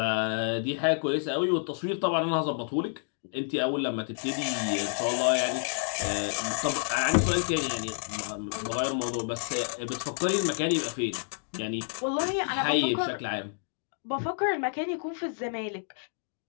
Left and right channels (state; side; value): silent; right; digital silence